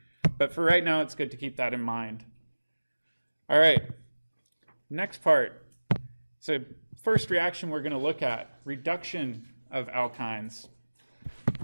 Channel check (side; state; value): both; inverted; correlation -1.00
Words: But for right now, it's good to keep that in mind. All right, next part. So first reaction we're going to look at, reduction of alkynes.